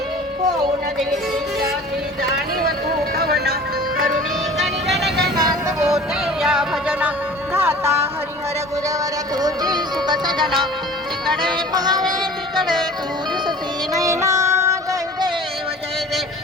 होऊन देवी जाती जाणीव तू कवना करुणी गण गण गणात होते या भजना गाता हरिहर गुरवर तुझी सुख सजना तिकडे पहावे तिकडे तू दिसती नैना जय देव जय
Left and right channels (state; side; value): normal; both; correlation 0.43